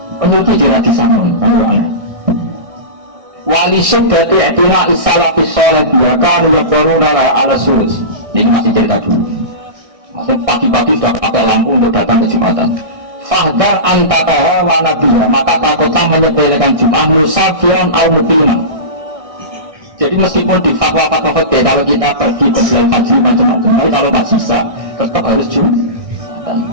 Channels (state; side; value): late; left; 1.6 ms